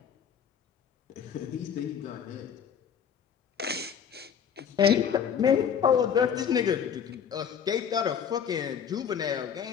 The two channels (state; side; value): quieter; right; 7.8 dB